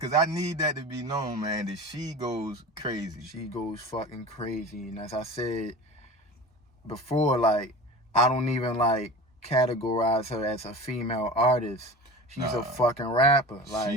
I need that to be known, man, that she goes crazy. She goes fucking crazy. And as I said before, like, I don't even like categorize her as a female artist. She's a fucking rapper. Like,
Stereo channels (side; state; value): both; normal; correlation 0.34